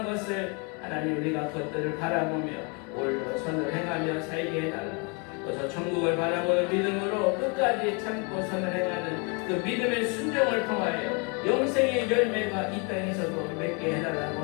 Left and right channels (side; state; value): right; quieter; 33.4 dB